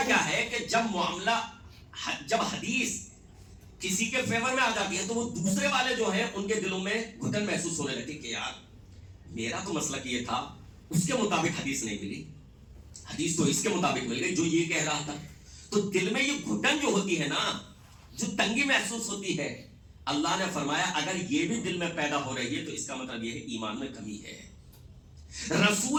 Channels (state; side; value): identical; both; correlation 1.00